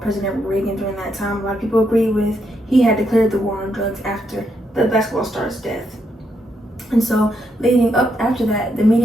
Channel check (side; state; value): both; normal; correlation 0.79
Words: President Reagan during that time. A lot of people agree with, he had declared the war on drugs after the basketball star's death. And so leading up after that, the